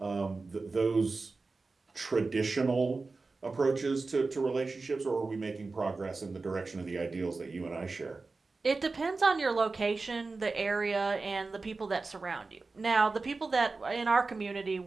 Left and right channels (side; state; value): left; quieter; 3.8 dB